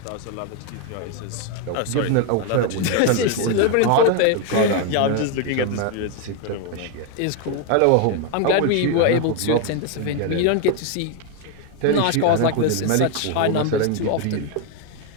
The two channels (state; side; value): different; both; correlation 0.01